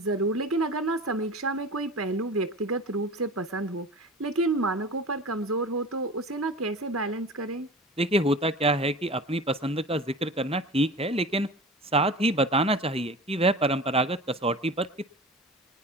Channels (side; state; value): both; normal; correlation 0.36